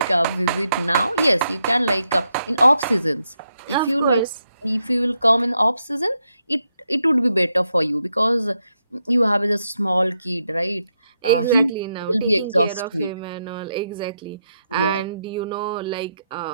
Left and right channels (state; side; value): inverted; both; correlation -0.82